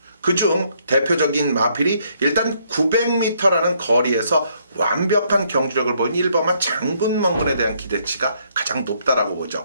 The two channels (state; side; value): inverted; both; correlation -0.70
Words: 그중 대표적인 마필이 일단 900m라는 거리에서 완벽한 경주력을 보인 1번마 장군멍군에 대한 기대치가 가장 높다라고